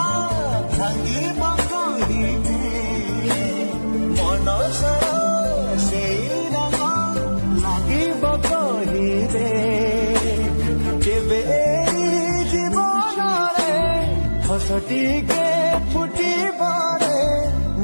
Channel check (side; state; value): both; inverted; correlation -1.00